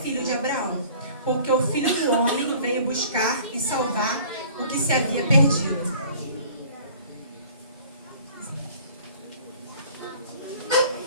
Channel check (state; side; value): inverted; both; correlation -0.50